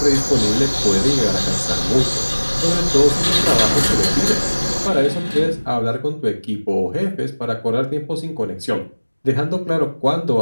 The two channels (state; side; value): inverted; both; correlation -1.00